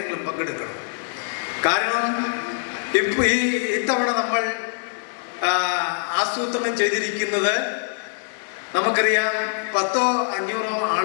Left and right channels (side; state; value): right; silent; digital silence